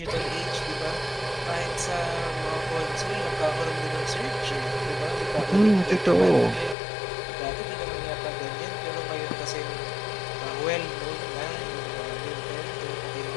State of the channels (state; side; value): drops out; right; at 6.8 s